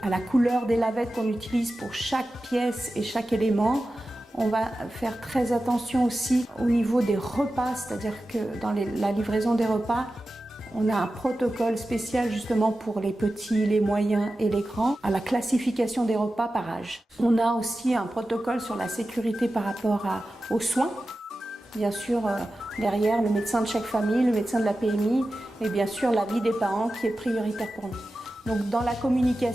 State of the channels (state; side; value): normal; both; correlation 0.93